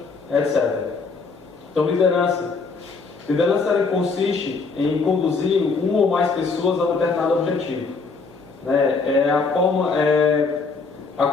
etc. Então liderança ela consiste em conduzir uma ou mais pessoas a um determinado objetivo. A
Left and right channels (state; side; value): quieter; right; 4.5 dB